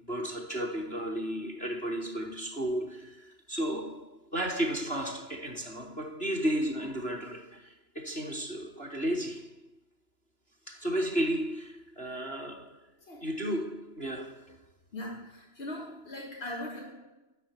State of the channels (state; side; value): late; right; 2.9 ms